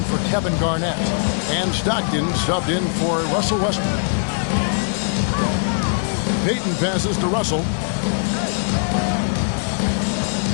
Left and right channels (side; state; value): right; silent; 65 dB below the other